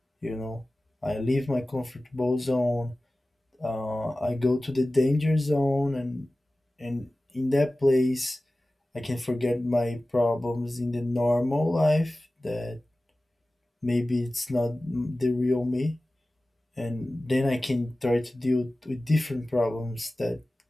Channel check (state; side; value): normal; both; correlation 0.96